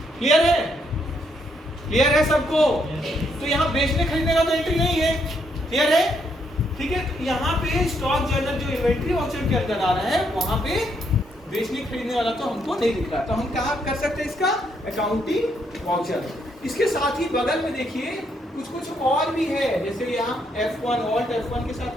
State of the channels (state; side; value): normal; both; correlation 0.74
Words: क्लियर है, क्लियर है सबको। तो यहाँ बेचने खरीदने का तो एंट्री नहीं है, क्लियर है, ठीक है। तो यहाँ पे स्टॉक जर्नल जो इन्वेंट्री वाउचर के अंदर आ रहा है, वहां पे बेचने खरीदने वाला तो हमको नहीं दिख रहा। तो हम कहाँ कर सकते हैं इसका, अकाउंटिंग वाउचर। इसके साथ ही बगल में देखिए कुछ और भी है, जैसे यहाँ F1 ऑल्ट F1 के